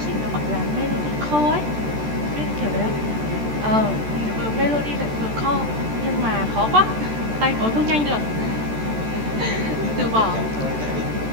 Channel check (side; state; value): left; late; 13 ms